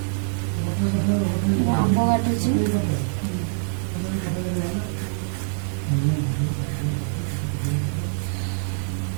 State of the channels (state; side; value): silent; left; digital silence